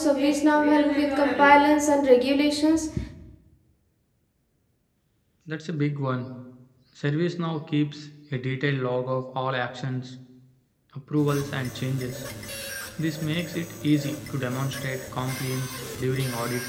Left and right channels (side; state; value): both; identical; correlation 1.00